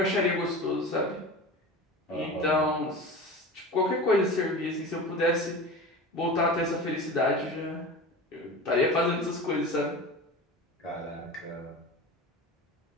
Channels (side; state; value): both; normal; correlation 0.32